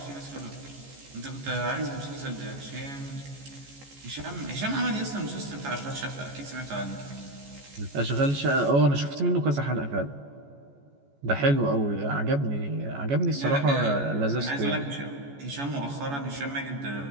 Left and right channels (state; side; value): late; left; 14 ms